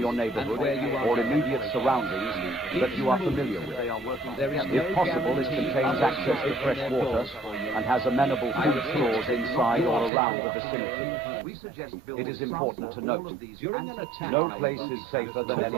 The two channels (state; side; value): drops out; left; at 10.1 s